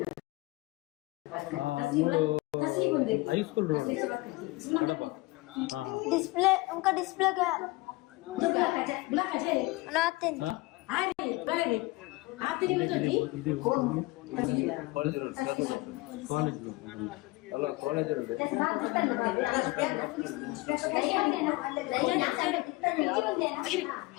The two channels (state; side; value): quieter; right; 22.0 dB